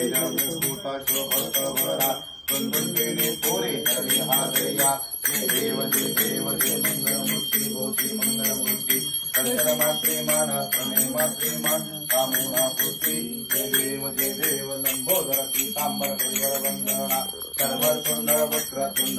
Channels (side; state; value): both; identical; correlation 1.00